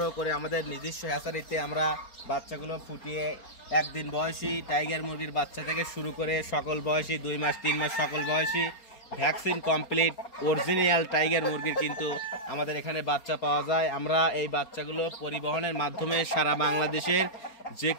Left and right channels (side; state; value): right; late; 4.3 ms